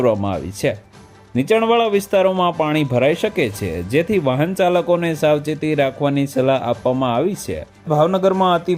આવી છે. નીચાણવાળા વિસ્તારોમાં પાણી ભરાઈ શકે છે, જેથી વાહન ચાલકોને સાવચેતી રાખવાની સલાહ આપવામાં આવી છે. ભાવનગરમાં અતિ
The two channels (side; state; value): both; identical; correlation 1.00